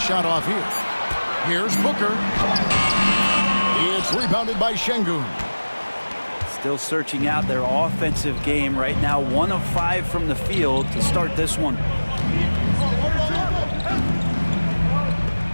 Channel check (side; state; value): both; inverted; correlation -1.00